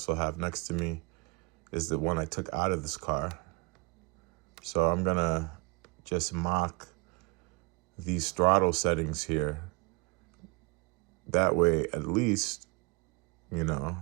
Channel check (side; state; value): left; quieter; 29.6 dB